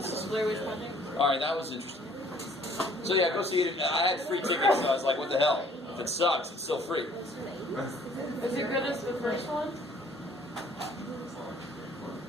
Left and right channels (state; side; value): normal; both; correlation 0.58